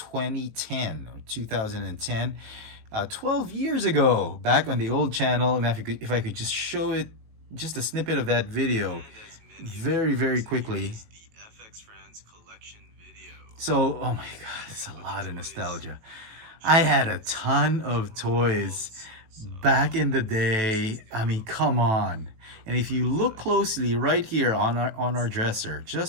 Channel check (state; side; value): late; left; 18 ms